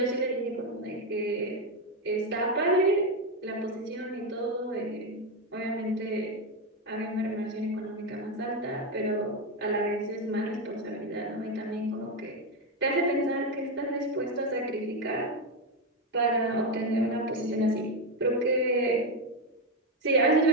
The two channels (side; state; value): both; normal; correlation 0.09